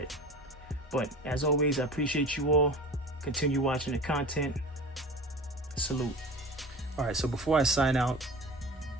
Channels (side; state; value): both; normal; correlation 0.34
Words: But as always, I appreciate you all. Continue watching the content. Salute. All right, so before I sign out,